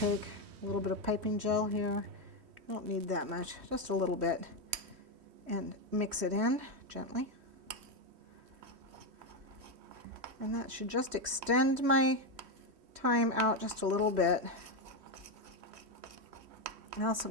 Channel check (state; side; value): late; left; 3.1 ms